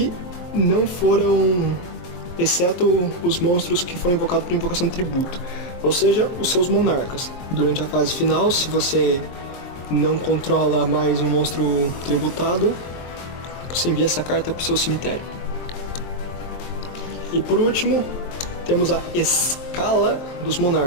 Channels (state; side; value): late; right; 23 ms